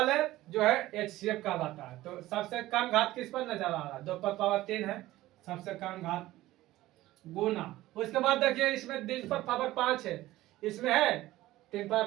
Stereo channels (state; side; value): quieter; left; 16.5 dB